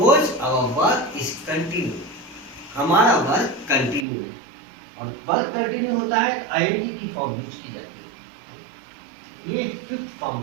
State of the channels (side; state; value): left; drops out; at 4.0 s